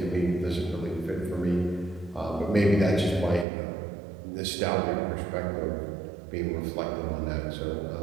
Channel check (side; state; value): left; drops out; at 3.5 s